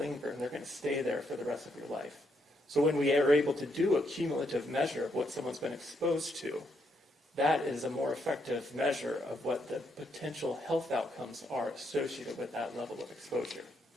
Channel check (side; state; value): both; normal; correlation 0.76